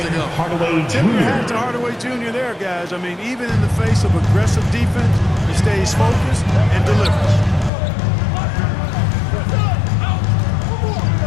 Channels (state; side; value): drops out; right; at 7.7 s